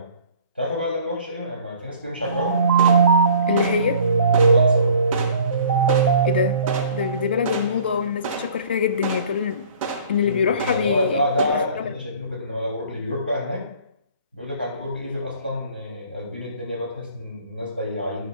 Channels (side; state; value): both; inverted; correlation -0.51